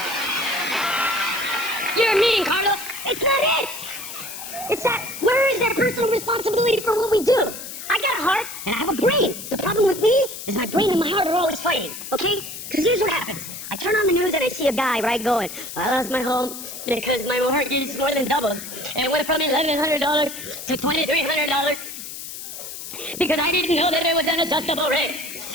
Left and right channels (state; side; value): noise; left; hiss, 10 dB below the sound